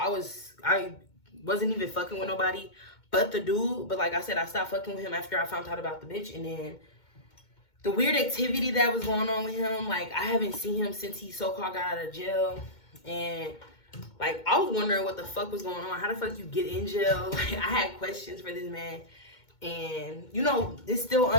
wasn't even fucking with nobody but the dude. But like I said, I stopped fucking with him after I found out about the bitch. And then the weird activity that was going on with him. Like, I haven't seen him since he so-called got out of jail. And, like, I was wondering what the fuck was going on. How the fuck you get in jail? Like, I had questions for this man. And, you know, it's still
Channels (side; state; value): right; late; 2.2 ms